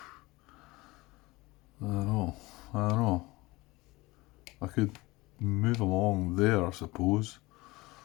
I don't know. I could move them along there, I suppose.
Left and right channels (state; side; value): quieter; right; 21.8 dB